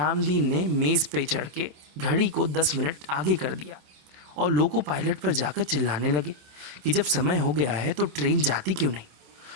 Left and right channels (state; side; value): late; left; 27 ms